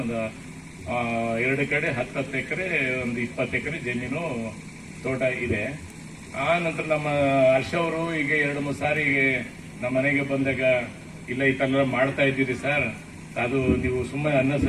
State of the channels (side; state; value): both; identical; correlation 1.00